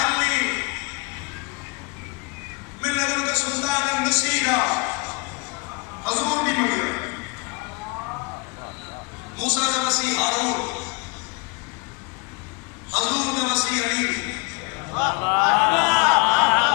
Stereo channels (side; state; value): right; quieter; 30.2 dB